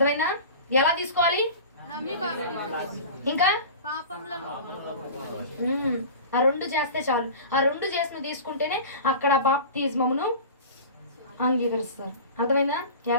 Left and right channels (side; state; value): both; inverted; correlation -0.35